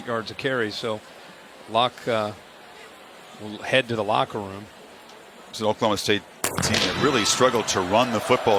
yards a carry. So Locke will head to the locker room. It's an Oklahoma State team that really struggled to run the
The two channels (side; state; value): both; identical; correlation 1.00